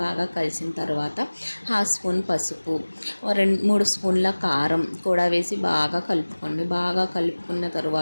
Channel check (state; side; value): inverted; both; correlation -1.00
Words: బాగా కలిసిన తర్వాత హాఫ్ స్పూన్ పసుపు, 2-3 స్పూన్ల కారం కూడా వేసి బాగా కలుపుకోండి. బాగా కలుపుకున్న